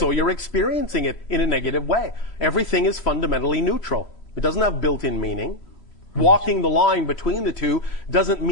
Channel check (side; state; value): right; late; 3.5 ms